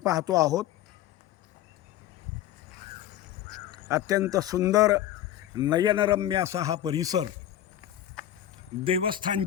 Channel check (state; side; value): quieter; right; 12.0 dB